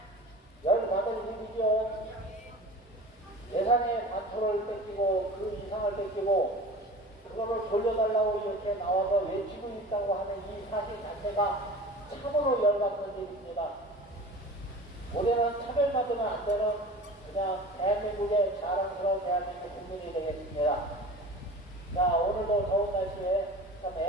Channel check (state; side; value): normal; both; correlation 0.38